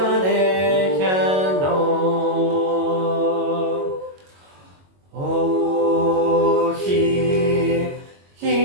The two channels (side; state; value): left; late; 22 ms